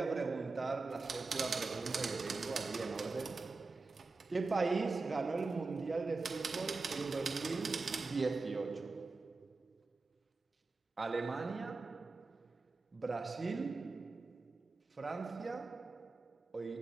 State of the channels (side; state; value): left; quieter; 3.8 dB